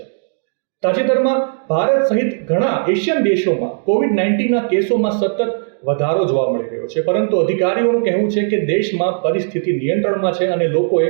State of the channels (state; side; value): silent; left; digital silence